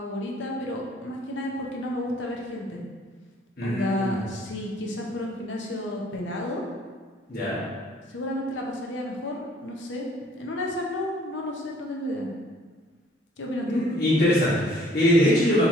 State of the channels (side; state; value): both; normal; correlation 0.58